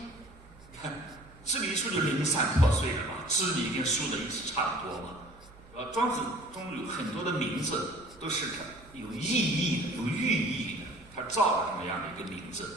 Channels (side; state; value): right; noise; hum, 24 dB below the sound